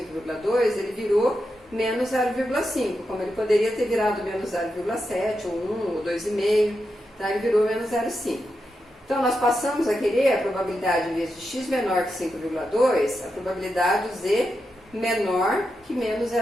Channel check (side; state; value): both; normal; correlation 0.87